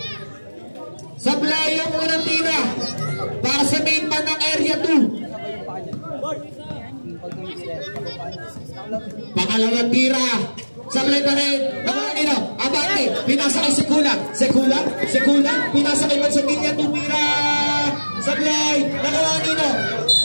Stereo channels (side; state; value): both; inverted; correlation -1.00